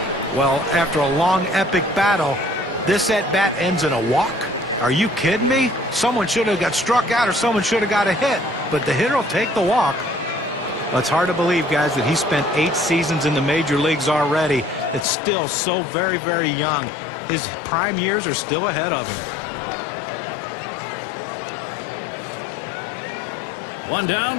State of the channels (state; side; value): drops out; right; at 15.1 s